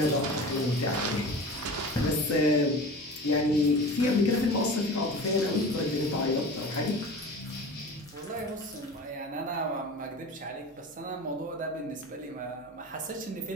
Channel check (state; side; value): normal; both; correlation 0.35